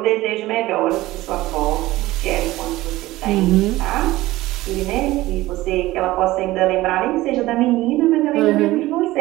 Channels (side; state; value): left; quieter; 17.6 dB